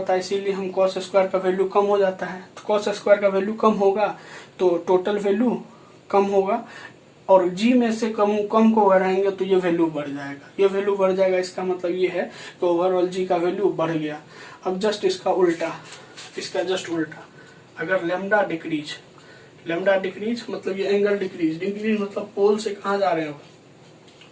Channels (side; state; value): both; identical; correlation 1.00